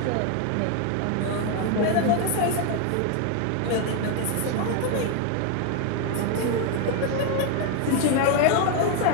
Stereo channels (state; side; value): different; both; correlation 0.01